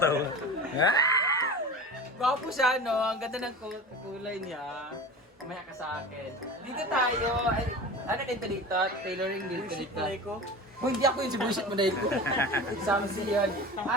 Gwapo siya, no? Ang ganda ng kulay niya. Kumaya ka sa akin. Dito tayo. Ay, ano dito dito? Tailoring dito dito. Kung hindi ako yung sibusit mo dahil ko. Examsi yun.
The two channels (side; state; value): both; normal; correlation 0.33